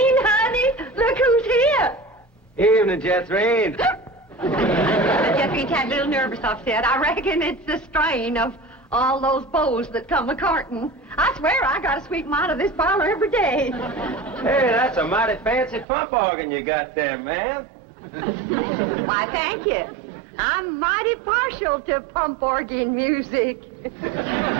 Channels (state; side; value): drops out; left; at 15.9 s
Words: honey, look who's here. Evening, Jethrine. Jethrine's had a little nervous upset. I reckon it's the strain of all those beaux that come a-courting. I swear I got to sweep them out of this parlor every day. Hey, that's a mighty fancy pump organ you got there, ma'am. Why, thank you. I'm mighty partial to pump organ music.